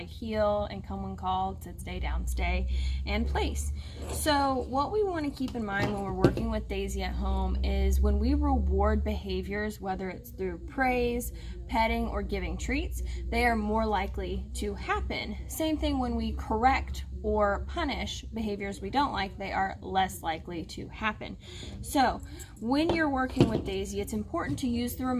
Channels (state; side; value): identical; both; correlation 1.00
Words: heel and come when called, sit, stay, down, stay, and place. So what we want to keep in mind when we're working with Daisy at home is when we reward behaviors, whether it's through praise, petting, or giving treats, they are more likely to happen. Same thing when we correct or punish behaviors we don't like, they are less likely to happen. So when you're working with Daisy, it's important to use the